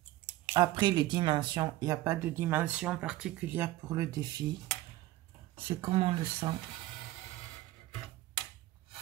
Après les dimensions, il n'y a pas de dimension particulière pour le défi. C'est comme on le sent.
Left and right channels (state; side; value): quieter; left; 16.4 dB